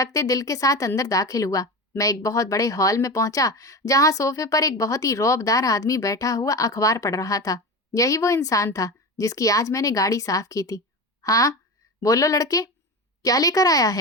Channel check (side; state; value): both; normal; correlation 0.25